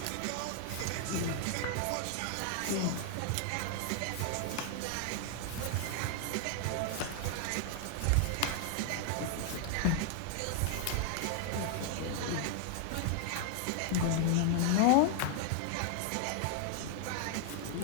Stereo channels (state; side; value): different; both; correlation 0.00